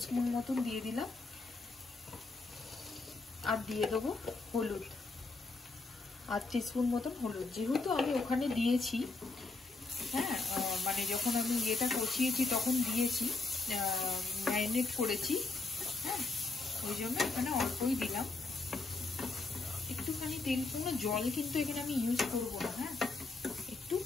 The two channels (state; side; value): quieter; right; 3.6 dB